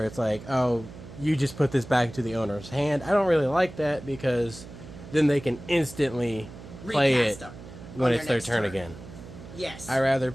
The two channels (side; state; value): right; noise; hum, 15 dB below the sound